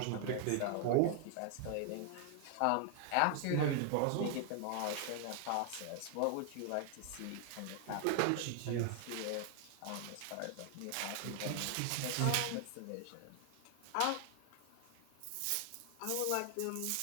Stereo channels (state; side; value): different; both; correlation 0.00